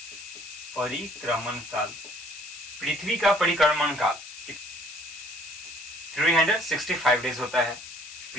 पृथ्वी का परिक्रमण काल 365 डेज होता है।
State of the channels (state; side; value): noise; left; hiss, 13 dB below the sound